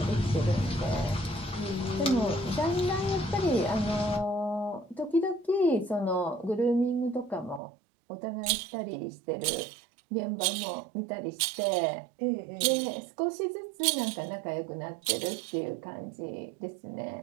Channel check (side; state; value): left; drops out; at 7.6 s